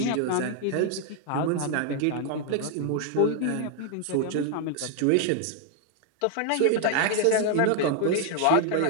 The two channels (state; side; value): different; both; correlation 0.00